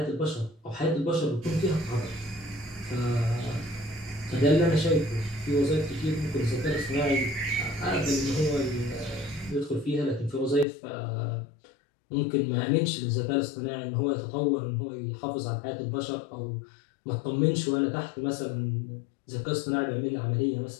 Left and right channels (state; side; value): drops out; right; at 10.7 s